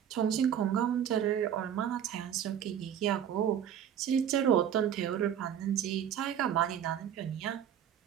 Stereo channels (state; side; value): quieter; left; 9.4 dB